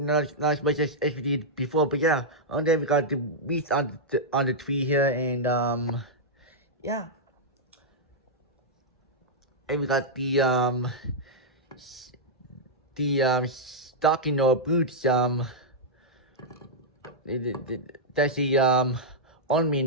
as much as we did before. But yeah, and then we got the wreath on the tree here, and yeah, and we got the stocking or boots that's the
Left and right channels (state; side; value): normal; both; correlation -0.07